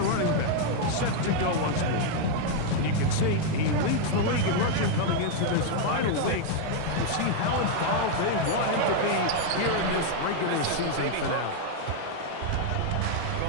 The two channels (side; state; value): both; different; correlation 0.00